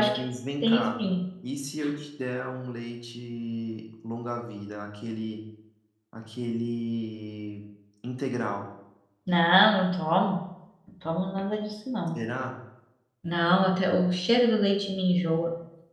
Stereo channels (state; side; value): identical; both; correlation 1.00